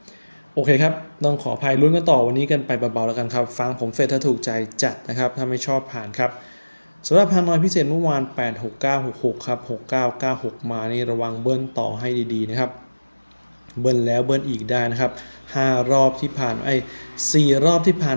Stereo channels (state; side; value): inverted; both; correlation -1.00